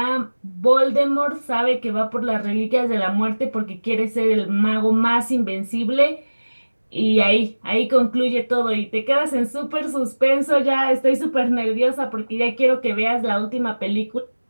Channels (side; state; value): both; inverted; correlation -1.00